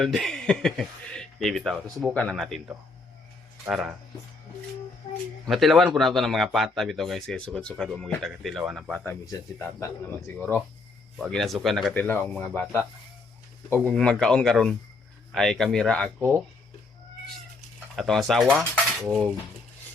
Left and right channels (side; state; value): right; quieter; 3.7 dB